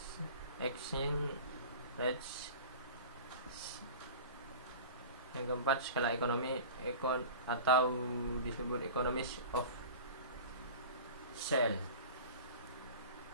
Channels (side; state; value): both; inverted; correlation -0.36